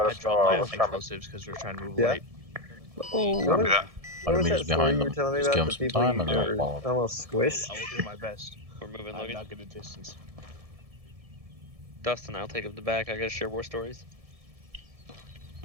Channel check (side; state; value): left; late; 1.7 ms